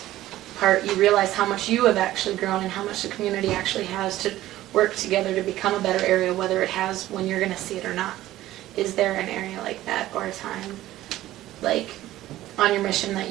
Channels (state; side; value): quieter; left; 15.0 dB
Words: part, you realize how much you have actually grown and how much the community actually has to work together to become a better area, whether it has when you're going to see it or not. Is there an area like that or a time like on your mission that